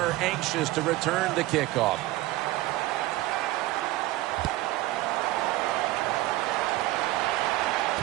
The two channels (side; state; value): left; quieter; 17.6 dB